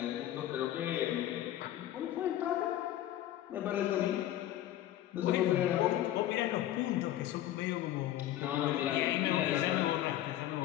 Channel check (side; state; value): right; quieter; 13.1 dB